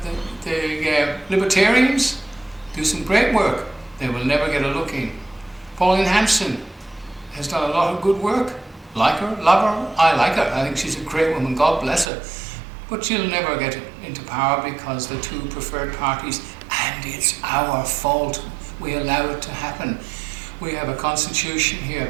the libertarians do some great work. They will never get a looking. Pauline Hanson has done a lot of good work. Like her, love her, I like her. I think she's a great woman, God bless her. But she'll never get into power because the two preferred parties, and it's our fault. We allow it to happen. We have a constitution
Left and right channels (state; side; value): drops out; left; at 12.1 s